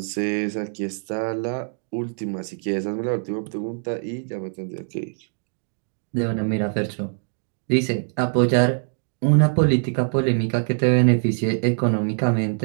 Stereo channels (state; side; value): silent; left; digital silence